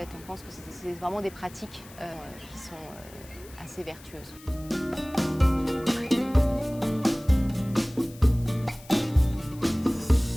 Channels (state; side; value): noise; left; hiss, 21 dB below the sound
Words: on pense que c'est vraiment des pratiques qui sont assez vertueuses.